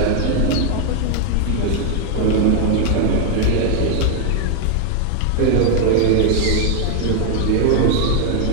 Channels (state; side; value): different; both; correlation 0.00